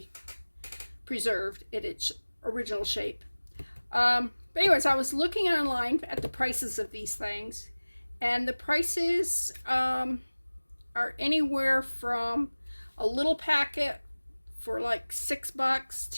preserved in its original shape. But anyways, I was looking online at the prices of these things, and the prices are anywhere from a little packet for like $6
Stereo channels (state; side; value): inverted; both; correlation -1.00